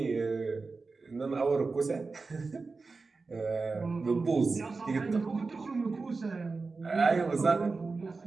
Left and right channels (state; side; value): quieter; left; 4.1 dB